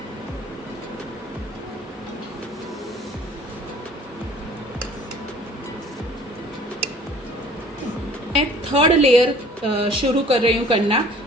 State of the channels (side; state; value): both; normal; correlation 0.51